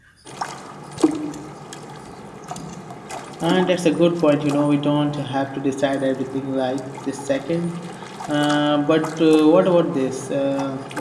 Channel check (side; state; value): both; identical; correlation 1.00